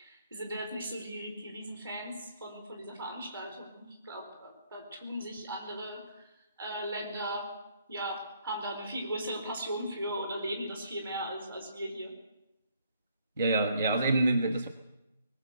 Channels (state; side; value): inverted; both; correlation -0.67